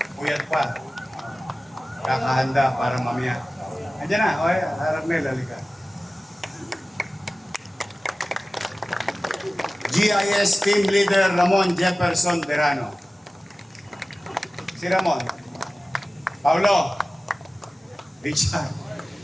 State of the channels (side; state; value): both; normal; correlation 0.96